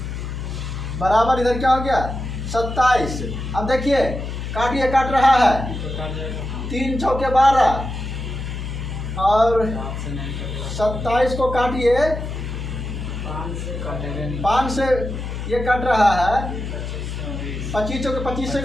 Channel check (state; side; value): noise; left; hum, 6 dB below the sound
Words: बराबर इधर क्या हो गया 27। अब देखिए काटिए, काट रहा है 3 चौके 12 और 27 को काटिए 5 से ये कट रहा है 25 चौके 25 से